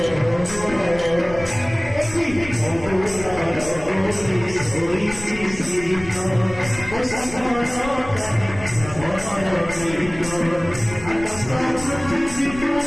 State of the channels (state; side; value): noise; left; rumble, 14 dB below the sound